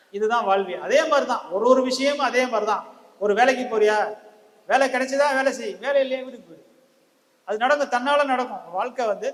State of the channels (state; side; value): identical; both; correlation 1.00